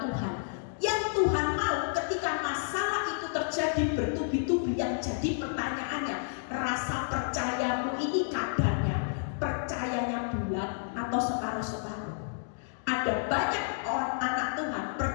Yang Tuhan mau ketika masalah itu terjadi bertubi-tubi, yang jadi pertanyaannya, rasa percayamu ini kadarnya, percayanya bulat atau separuh-separuh. Ada banyak orang anak Tuhan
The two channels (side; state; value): right; silent; digital silence